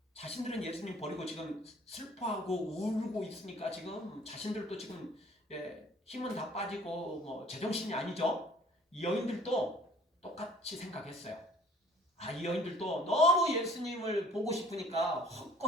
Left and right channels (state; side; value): normal; both; correlation 0.53